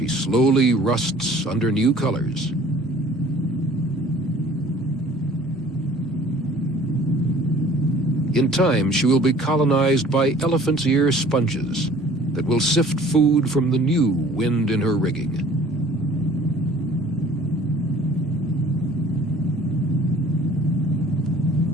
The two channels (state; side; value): normal; both; correlation 0.51